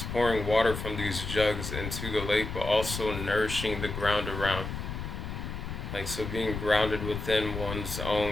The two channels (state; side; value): noise; left; rumble, 6 dB below the sound